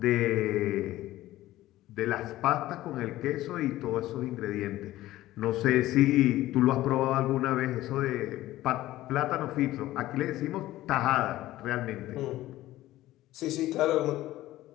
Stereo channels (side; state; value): right; quieter; 15.7 dB